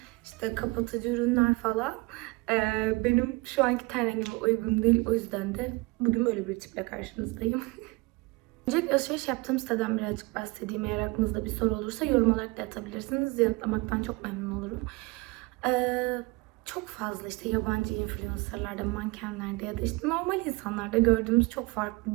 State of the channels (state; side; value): quieter; left; 24.4 dB